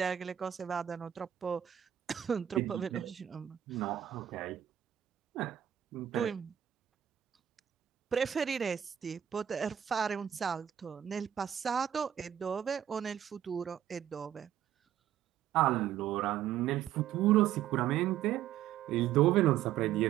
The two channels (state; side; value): quieter; left; 10.7 dB